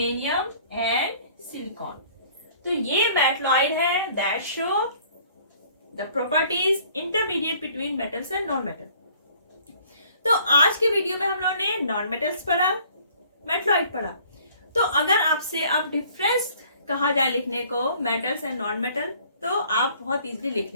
एंड सिलिकॉन। तो ये मेटलॉइड है that show the properties intermediate between metals and non metal. तो आज के वीडियो में हम लोगों ने नॉन मेटल्स पढ़ा, मेटलॉइड पढ़ा। तो अगर आपसे अब डिफरेंस कहा जाए लिखने को मेटल्स एंड नॉन मेटल, तो आप बहुत इजीली लिख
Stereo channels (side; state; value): both; inverted; correlation -0.56